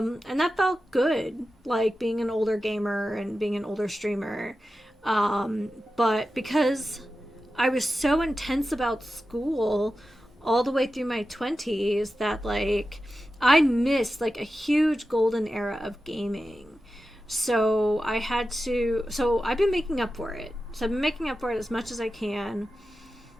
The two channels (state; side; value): normal; both; correlation 0.92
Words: that felt good, like being an older gamer and being an older streamer. But because I was so intense about school all the way through my 20s that like I missed like a huge golden era of gaming. So I've been making up for it. So I've been making up for it as much as I can.